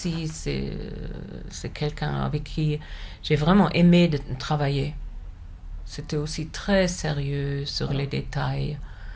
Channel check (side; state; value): both; identical; correlation 1.00